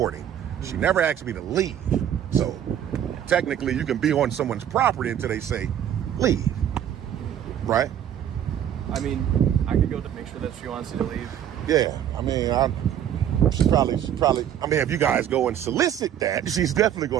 She never asked me to leave. So technically, you can be on someone's property until they say leave, right? I mean, I could go to make sure that she wants you to leave. Yeah, I mean, she probably. I mean, if you guys go and solicit that, she's definitely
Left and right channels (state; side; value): quieter; left; 10.1 dB